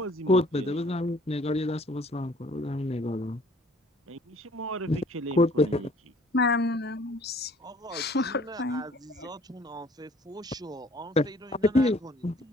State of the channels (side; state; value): both; normal; correlation 0.56